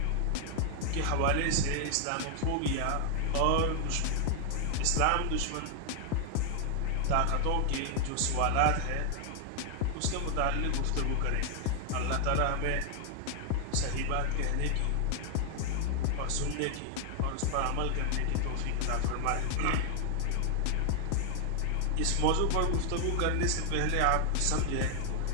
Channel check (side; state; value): both; different; correlation 0.00